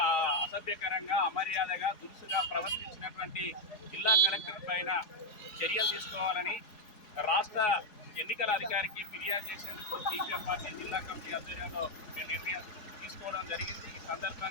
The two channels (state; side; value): late; right; 4.8 ms